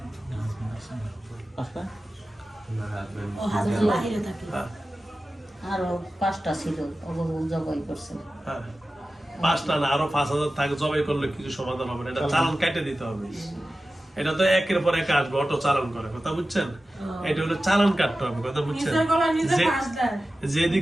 আসলে আরো 5টা ছিল, ওগুলো জবাই করছে। হ্যাঁ, 5টা না, আরো 5,000 থাকে। জবাই করলে কিছু সমাধান হবে না, এটা চালান কেটে দিতে হবে। এটা তো একের পর এক আসবে, অটো চালান করে, কথা বুঝছেন? এটা হলো চালান কাটতে হবে, কথা বুঝছেন? যেদিক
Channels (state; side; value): normal; both; correlation 0.95